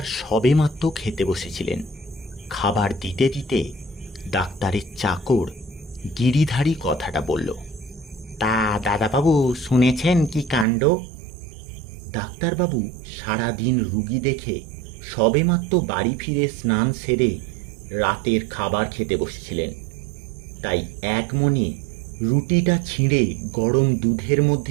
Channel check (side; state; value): left; drops out; at 10.7 s